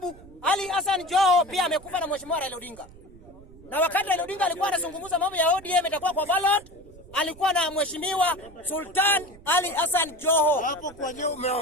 Ali Hassan Joho pia amekufa na Mheshimiwa Raila Odinga. Na wakati Raila Odinga alikuwa anazungumza mambo ya ODM itakuwa kwa ballot, alikuwa na Mheshimiwa Sultan Ali Hassan Joho. Hapo kwa nini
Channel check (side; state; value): right; noise; rumble, 22 dB below the sound